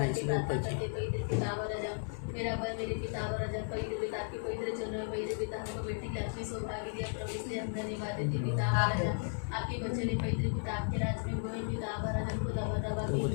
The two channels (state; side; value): silent; right; digital silence